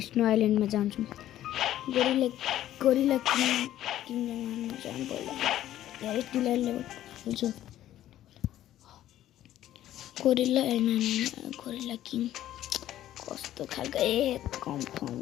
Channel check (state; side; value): quieter; right; 12.8 dB